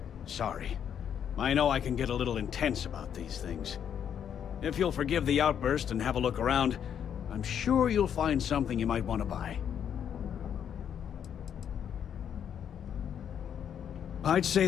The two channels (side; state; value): right; quieter; 8.7 dB